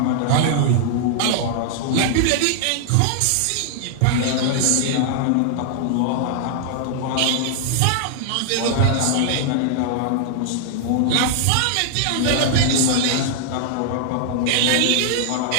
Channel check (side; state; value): both; different; correlation 0.00